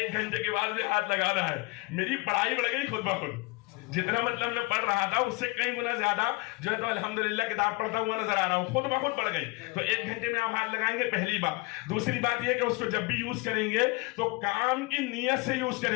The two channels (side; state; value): right; quieter; 24.9 dB